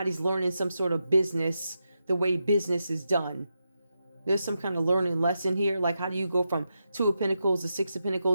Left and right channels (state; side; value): inverted; both; correlation -0.87